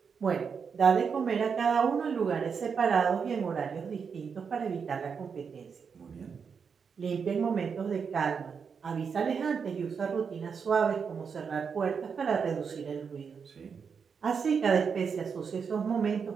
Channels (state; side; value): quieter; left; 6.2 dB